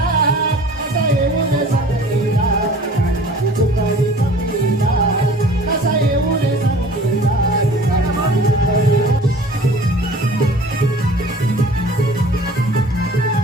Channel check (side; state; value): both; normal; correlation 0.46